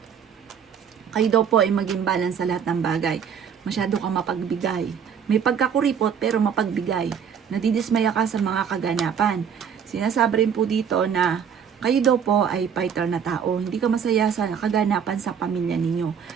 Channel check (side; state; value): left; quieter; 7.5 dB